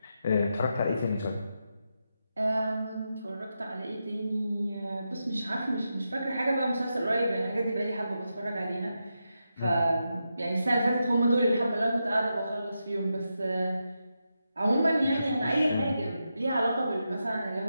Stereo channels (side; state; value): both; inverted; correlation -0.87